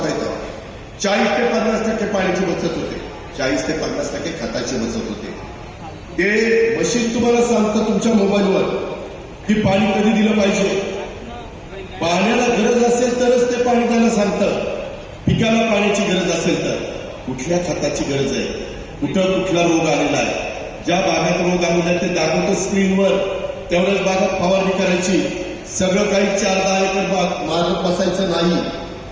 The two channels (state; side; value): identical; both; correlation 1.00